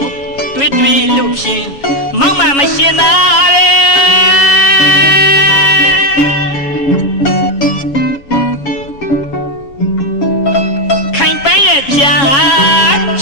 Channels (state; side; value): late; right; 6.9 ms